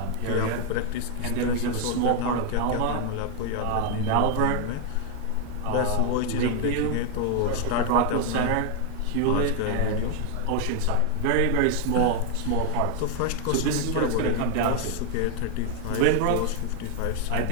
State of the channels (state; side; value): different; both; correlation 0.00